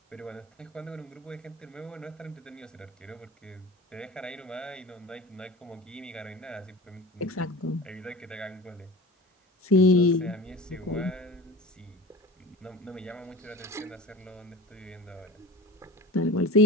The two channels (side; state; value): both; normal; correlation 0.35